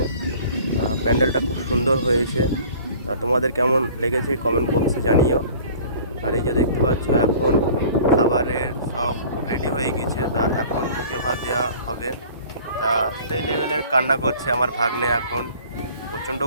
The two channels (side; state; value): both; inverted; correlation -0.47